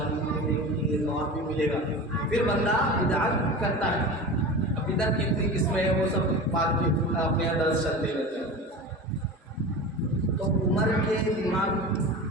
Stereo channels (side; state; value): both; normal; correlation 0.31